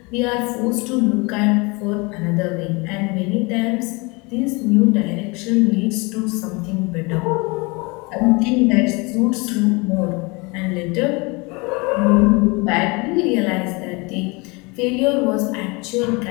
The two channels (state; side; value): quieter; right; 27.3 dB